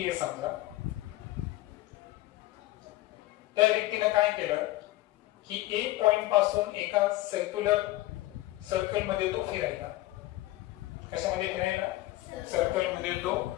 आहे समजा, त्या व्यक्तीने काय केलं की एक पॉइंट पासून एका सर्कल मध्ये तो फिरायला. कशामध्ये फिरायला? सर्कल मध्ये तो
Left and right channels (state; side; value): quieter; right; 17.6 dB